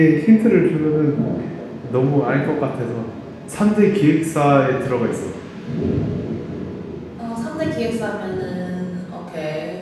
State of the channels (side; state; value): both; identical; correlation 1.00